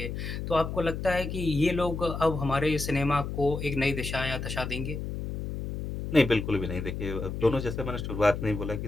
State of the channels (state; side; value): noise; left; hum, 5 dB below the sound